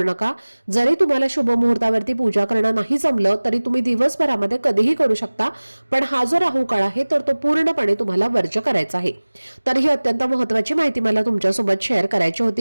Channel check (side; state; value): both; inverted; correlation -1.00